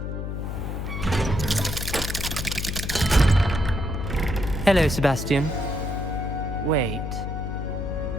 Hello, Sebastian. Wait.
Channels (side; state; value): left; noise; hum, 4 dB below the sound